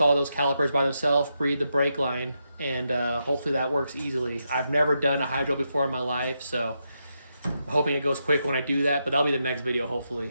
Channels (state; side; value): inverted; both; correlation -0.83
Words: those calipers by themselves, breed the brake line, and hopefully that works easily. I've never done a hydro before in my life, so I'm hoping it goes quick when I do that, but that'll be the next video,